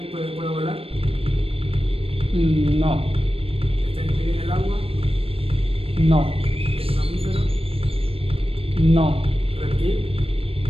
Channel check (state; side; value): late; left; 0.28 ms